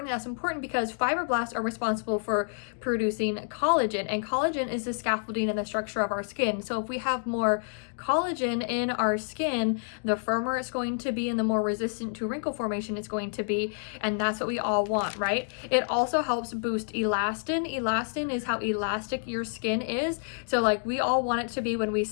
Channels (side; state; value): right; silent; digital silence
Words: That's important because fibroblasts are responsible for producing collagen, and collagen is the scaffolding and the structure of our skin. So if we have more collagen in our skin, the firmer it's going to be and the more resistant to wrinkle formation it's going to be, and that's what we all want, right? It also helps boost elastin. Elastin is how elastic your skin is. So like we all want it to be when we